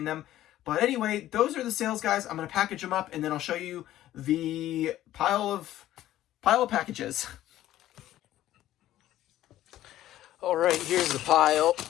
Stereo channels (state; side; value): quieter; right; 13.7 dB